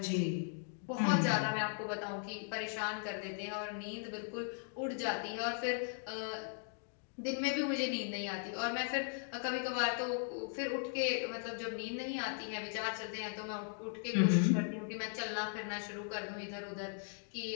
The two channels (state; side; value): silent; right; 52 dB below the other